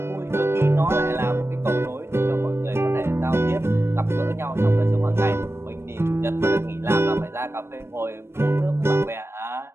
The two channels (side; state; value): left; late; 0.12 ms